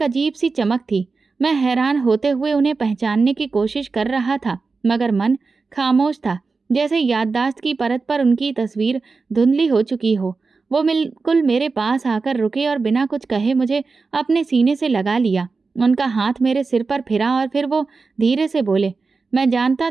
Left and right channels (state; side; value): quieter; left; 4.3 dB